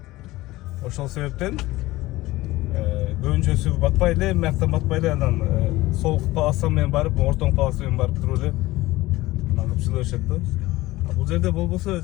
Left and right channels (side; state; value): right; quieter; 18.4 dB